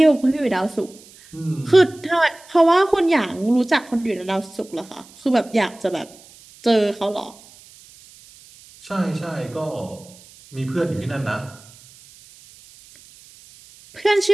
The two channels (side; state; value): right; noise; hiss, 24 dB below the sound